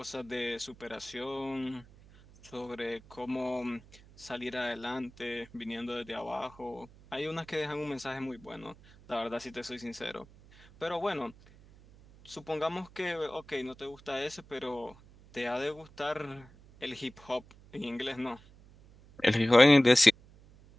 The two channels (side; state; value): right; noise; hum, 23 dB below the sound